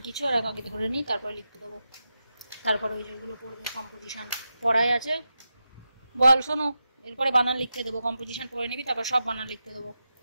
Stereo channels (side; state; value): both; inverted; correlation -0.90